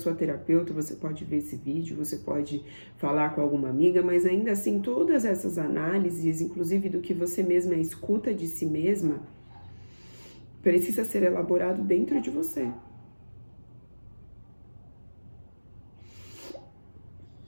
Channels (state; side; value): inverted; both; correlation -1.00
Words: terapeuta, você pode ver esse vídeo, você pode falar com alguma amiga, mas ainda assim todas essas análises, inclusive do que você mesma escuta de si mesma, precisa ser elaborado dentro de você.